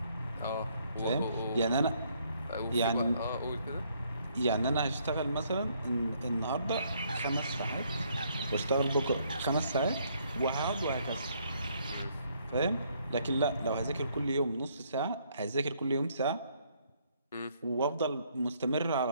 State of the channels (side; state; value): both; inverted; correlation -0.68